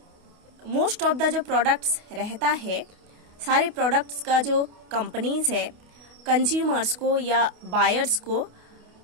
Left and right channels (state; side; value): late; left; 28 ms